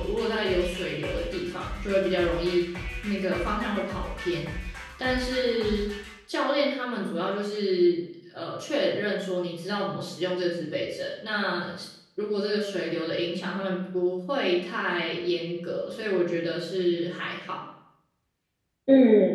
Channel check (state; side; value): identical; both; correlation 1.00